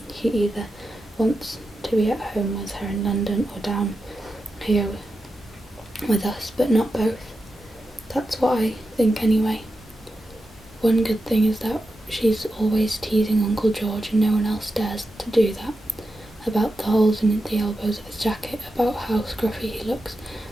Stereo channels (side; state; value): both; normal; correlation 0.89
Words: He either wants to be at home with her in London or down here with us, but not both. That's what I think anyway. One good thing is that she's always teasing Uncle George, and no one else dares to do that. About the holes in the elbows of his jacket, about how scruffy he looks.